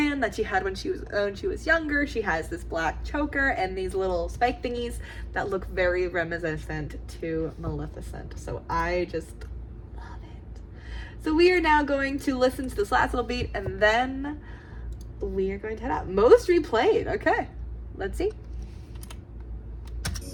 that she had when she was younger. She has this black choker and these little spike thingies that look very reminiscent to Maleficent. So I just love it. So we are now going to listen to this last little beat, and then we are going to head out. Most replayed. Okay, let's see.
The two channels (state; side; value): identical; both; correlation 1.00